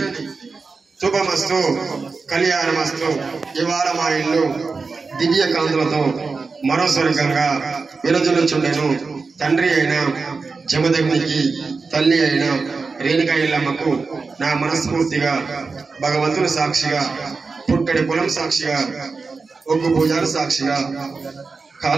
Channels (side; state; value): left; quieter; 4.4 dB